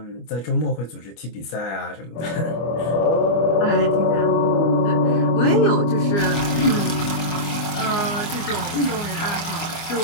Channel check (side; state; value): right; late; 25 ms